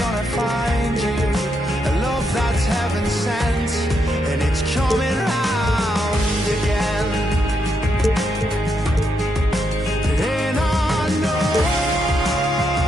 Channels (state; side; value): normal; both; correlation 0.80